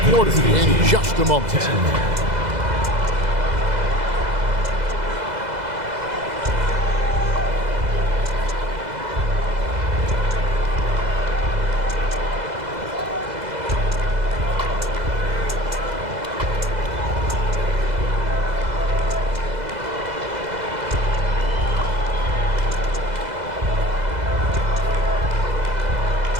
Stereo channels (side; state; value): left; late; 2.0 ms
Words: quarter in just a moment.